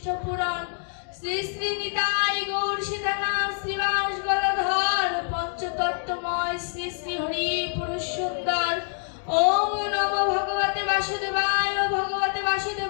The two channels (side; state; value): right; silent; 61 dB below the other